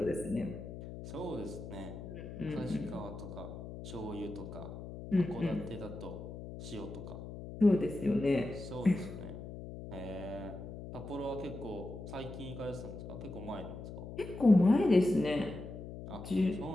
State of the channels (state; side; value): noise; left; hum, 10 dB below the sound